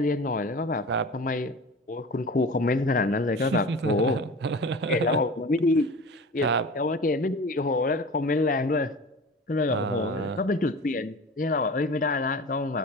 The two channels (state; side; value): normal; both; correlation 0.36